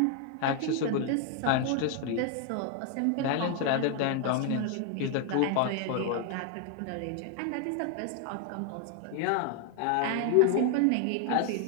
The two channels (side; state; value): both; different; correlation 0.00